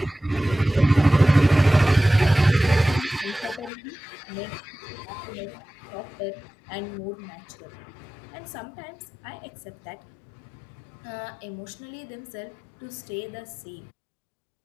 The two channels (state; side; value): drops out; right; at 3.7 s